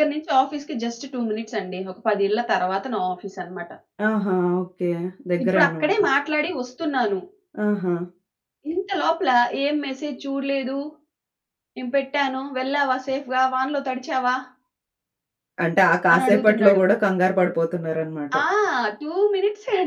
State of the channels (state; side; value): identical; both; correlation 1.00